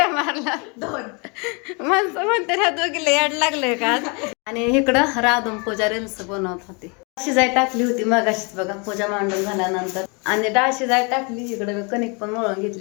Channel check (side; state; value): right; quieter; 32.1 dB